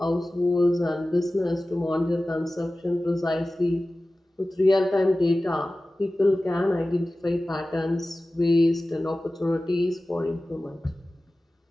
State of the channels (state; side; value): normal; both; correlation 0.96